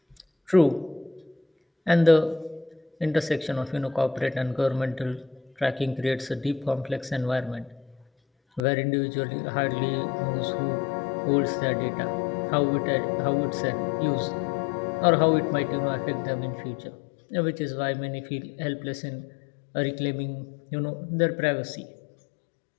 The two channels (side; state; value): right; drops out; at 8.6 s